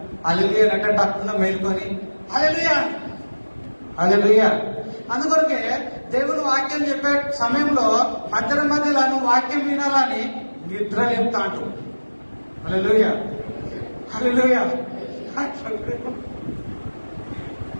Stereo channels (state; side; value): inverted; both; correlation -1.00